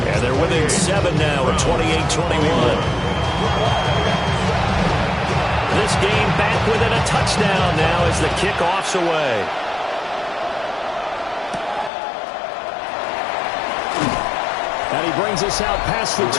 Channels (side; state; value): right; drops out; at 11.9 s